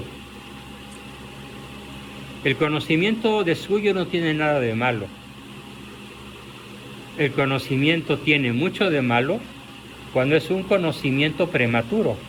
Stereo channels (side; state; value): both; identical; correlation 1.00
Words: El conocimiento de suyo no tiene nada de malo. El conocimiento tiene mucho de malo cuando es un conocimiento prematuro.